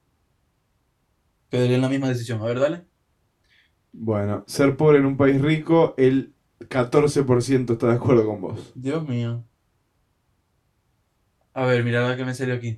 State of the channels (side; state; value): both; identical; correlation 1.00